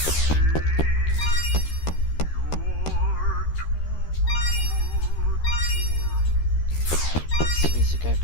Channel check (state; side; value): late; right; 13 ms